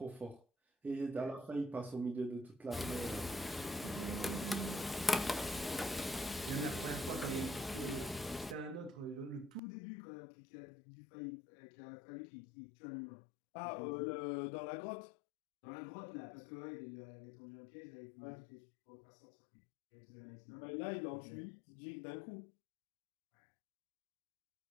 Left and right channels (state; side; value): drops out; right; at 9.6 s